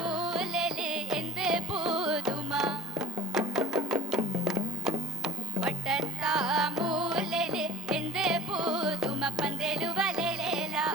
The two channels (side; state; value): both; normal; correlation 0.41